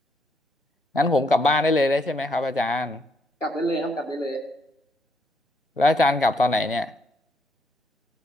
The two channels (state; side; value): normal; both; correlation 0.73